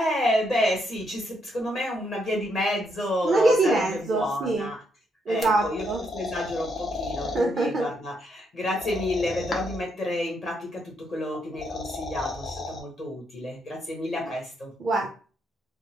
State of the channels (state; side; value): normal; both; correlation 0.76